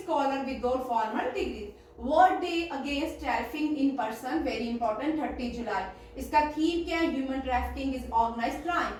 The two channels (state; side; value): identical; both; correlation 1.00